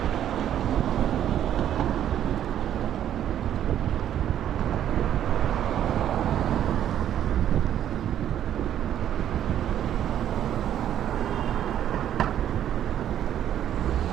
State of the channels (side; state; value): left; quieter; 10.6 dB